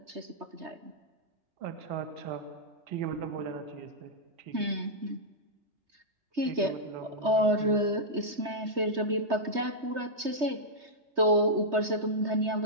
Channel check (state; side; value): late; left; 3.3 ms